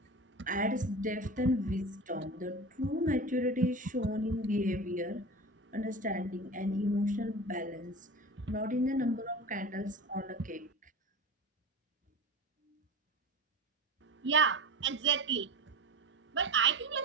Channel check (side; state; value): both; normal; correlation 0.31